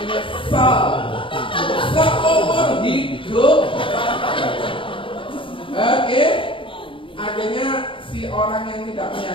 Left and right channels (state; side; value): late; right; 0.25 ms